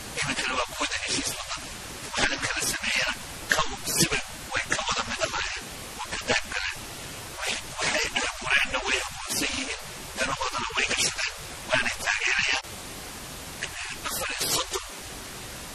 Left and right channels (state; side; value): identical; both; correlation 1.00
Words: إيمن كانوا كوده هشيس وحنا يمكن السميين كو سب ويكوض مده هاين وكقرب قالين وحي أبورين نوي أقونسيين دنو هذانا ويكشتين وأنا تاجريان أفر صدّن